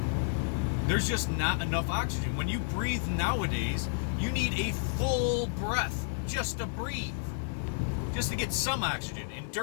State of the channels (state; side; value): silent; right; digital silence